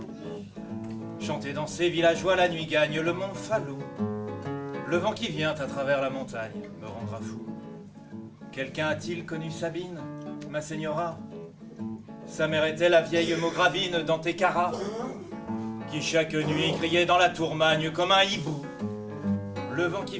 Chanter dans ces villageois, la nuit gagne le mont Falou. Le vent qui vient à travers la montagne me rendra fou. Quelqu'un a-t-il connu Sabine, ma señora? Sa mère était la vieille Maugravine d'Antequera, qui chaque nuit criait dans la tourmagne comme un hibou. Le vent qui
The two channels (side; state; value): both; identical; correlation 1.00